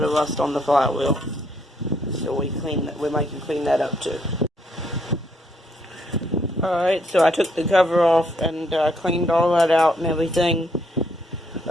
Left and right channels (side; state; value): both; normal; correlation 0.71